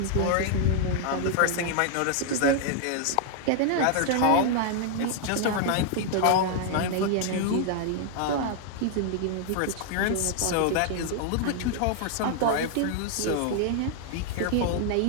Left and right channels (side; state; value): both; different; correlation 0.00